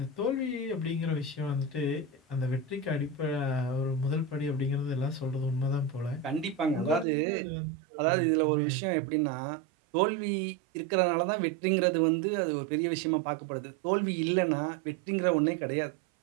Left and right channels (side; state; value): left; drops out; at 7.1 s